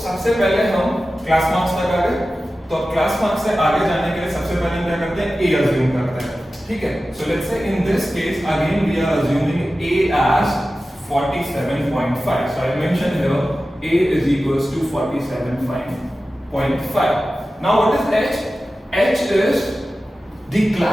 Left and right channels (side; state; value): both; normal; correlation 0.94